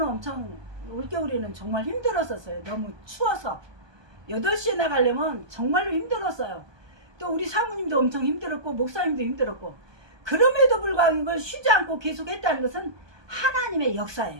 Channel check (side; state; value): left; late; 1.2 ms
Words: 엄청 올겨울에는 정말 힘들었었어요. 너무 추워서 8시에 나가려면 정말로 힘들었어요. 또 우리 사모님도 엄청 힘들었고 목사님도 힘들었고, 그럼에도 불구하고 이걸 쉬지 않고 계속 했다는 것은 하나님의